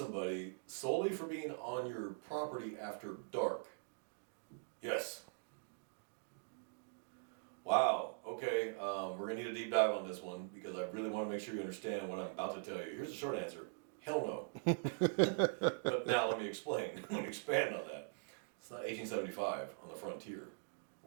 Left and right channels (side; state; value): left; silent; digital silence